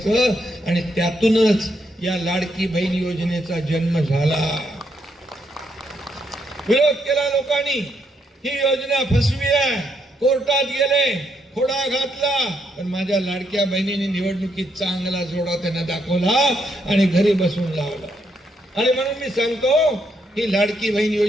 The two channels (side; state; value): both; normal; correlation 0.77